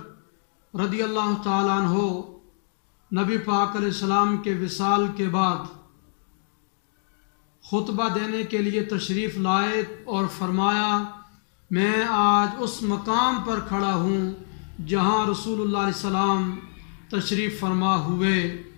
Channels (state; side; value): silent; right; digital silence